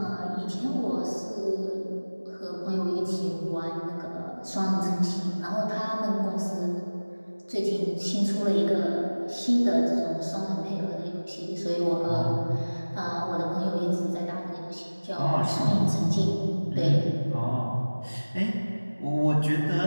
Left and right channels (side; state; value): both; inverted; correlation -1.00